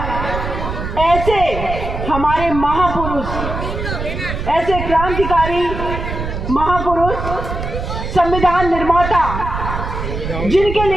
ऐसे हमारे महापुरुष, ऐसे क्रांतिकारी महापुरुष, संविधान निर्माता, जिनके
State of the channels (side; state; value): right; noise; rumble, 5 dB below the sound